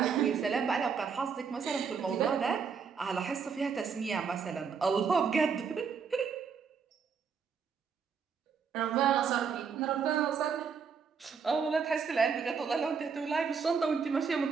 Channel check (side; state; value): left; quieter; 6.1 dB